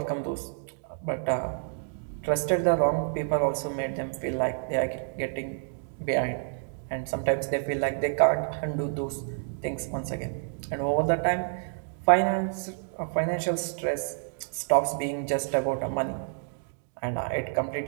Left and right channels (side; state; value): left; silent; digital silence